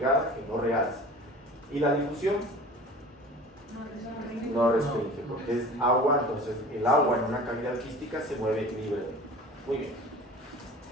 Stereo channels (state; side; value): normal; both; correlation 0.41